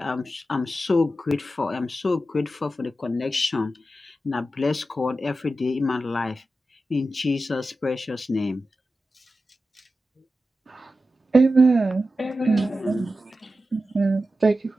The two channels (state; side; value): normal; both; correlation 0.92